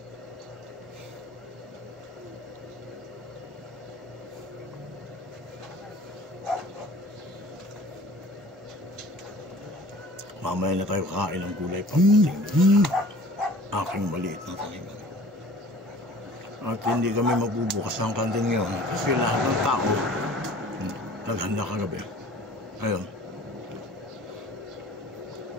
Mamaya na tayo kakain ng gulay pagdating aking maliit na tanim. At hindi kami magbubukas ng kantin ngayon kasi lahat ng tao naghanda kagabi. Ayun,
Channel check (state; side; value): normal; both; correlation 0.46